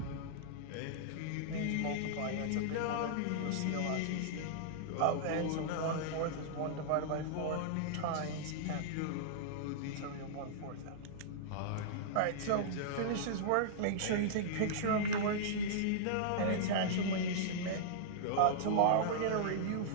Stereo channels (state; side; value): different; both; correlation -0.02